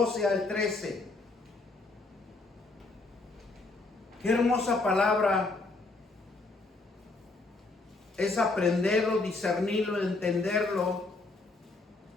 al 13. Qué hermosa palabra es aprenderlo, discernirlo, entenderlo,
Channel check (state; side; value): quieter; right; 3.4 dB